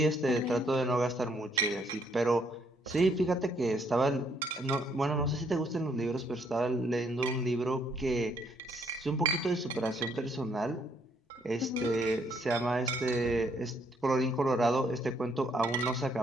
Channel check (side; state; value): both; normal; correlation 0.69